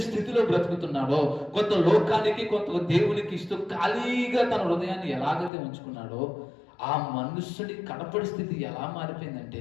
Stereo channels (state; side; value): drops out; right; at 5.5 s